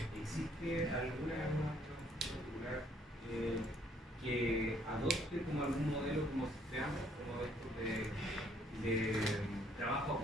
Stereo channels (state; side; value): normal; both; correlation 0.65